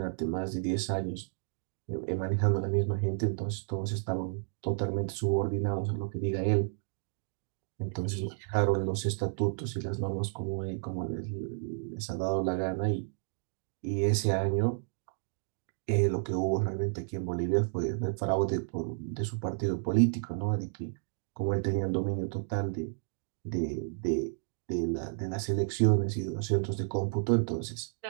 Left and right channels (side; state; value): left; silent; digital silence